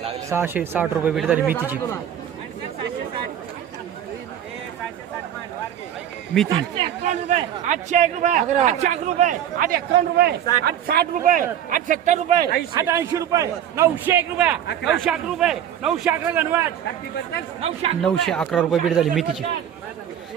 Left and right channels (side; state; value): left; quieter; 10.0 dB